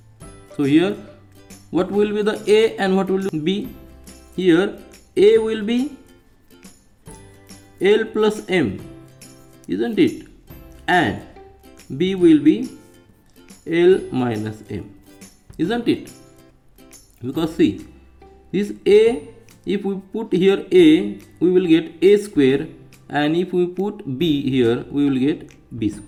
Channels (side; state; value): both; identical; correlation 1.00